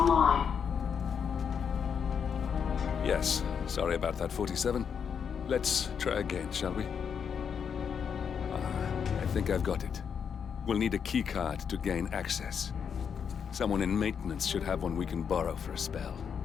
Yes, sorry about that, 47. Let's try again, shall we? I think I've got it. We'll need a keycard to gain access. Someone in maintenance should have one we can borrow for a spell.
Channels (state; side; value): quieter; right; 7.1 dB